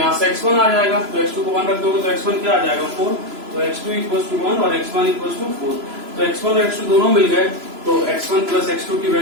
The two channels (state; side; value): late; left; 3.0 ms